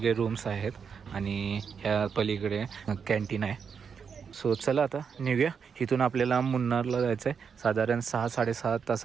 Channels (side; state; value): left; quieter; 6.4 dB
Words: रूम्स आहेत आणि ह्या पलीकडे कॅन्टीन आहे. सो चला आता निघूया. इथून आपल्याला मुन्नारला जायचं आहे. साधारण 6-6.5